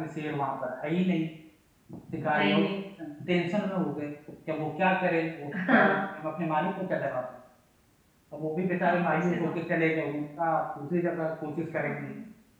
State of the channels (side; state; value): both; identical; correlation 1.00